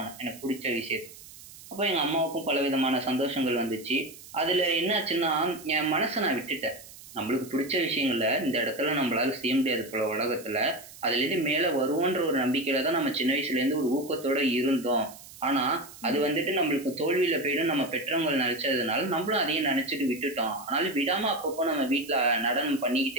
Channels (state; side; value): noise; right; hiss, 18 dB below the sound